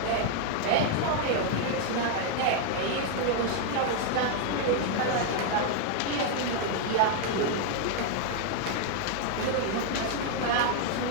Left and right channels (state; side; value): different; both; correlation 0.00